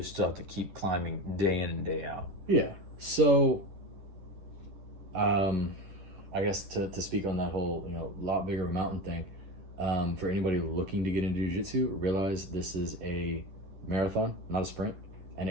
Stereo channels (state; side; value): late; left; 10 ms